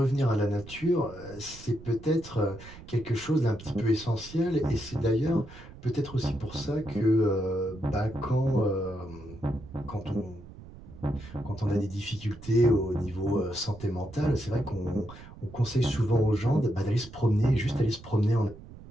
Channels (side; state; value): right; noise; rumble, 17 dB below the sound